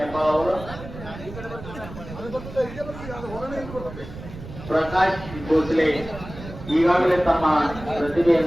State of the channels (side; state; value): right; noise; rumble, 13 dB below the sound